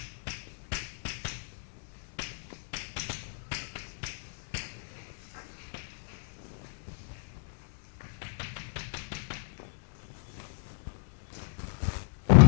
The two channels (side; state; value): right; silent; digital silence